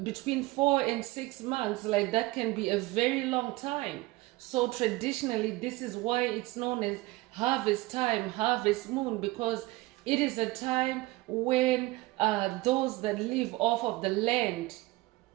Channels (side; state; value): left; quieter; 20.1 dB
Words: between 4 and 6 months. Like, that can be a very long time. So traditionally, this is why it's known as harvest time, harvest moon, because it is a time when those that live off of the land